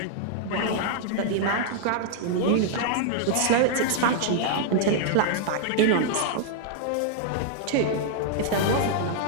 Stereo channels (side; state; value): both; different; correlation -0.01